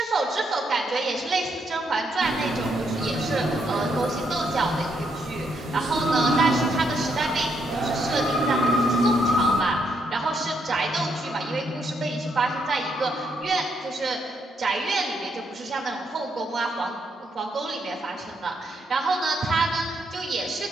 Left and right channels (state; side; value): normal; both; correlation 0.76